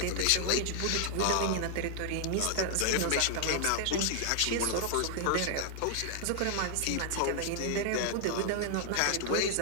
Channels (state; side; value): different; both; correlation 0.00